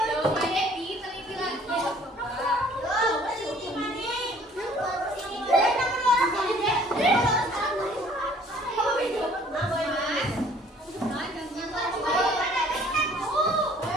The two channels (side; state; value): both; normal; correlation 0.56